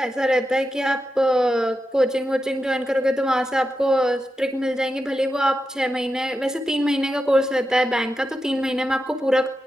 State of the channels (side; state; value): both; normal; correlation 0.89